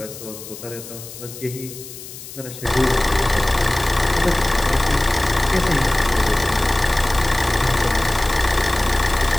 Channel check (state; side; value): noise; left; hiss, 14 dB below the sound